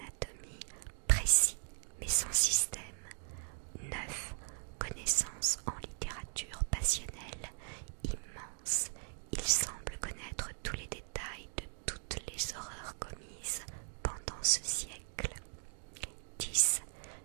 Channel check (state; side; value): silent; left; 52 dB below the other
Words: précis mais sans système. 9. Connaissances en littérature passionnelle, immense. Il semble connaître tous les détails de toutes les horreurs commises pendant ce siècle. 10.